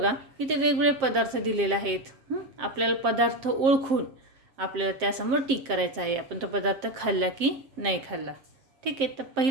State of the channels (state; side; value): late; left; 7.5 ms